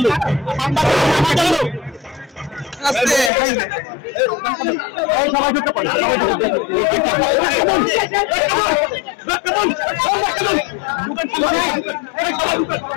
লোক, সাংবাদিক আমাদের লোক। সবাই ঢুকতে পারে,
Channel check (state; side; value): drops out; right; at 3.3 s